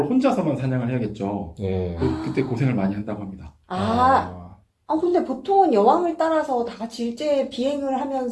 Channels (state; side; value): identical; both; correlation 1.00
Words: 혼자서만 사냥을 해야겠죠. 예. 그때 고생을 많이 한다고 합니다. 근데 보통은 여왕을 따라서 다 같이 일제 비행을